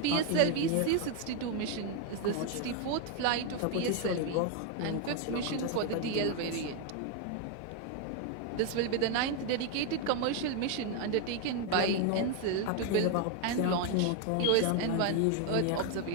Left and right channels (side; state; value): both; different; correlation 0.01